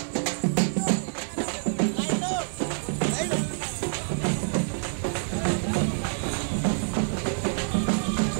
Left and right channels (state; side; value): silent; left; digital silence